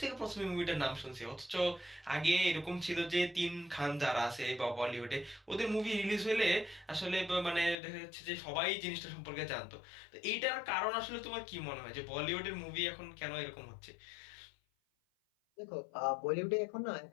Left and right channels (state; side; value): drops out; right; at 7.8 s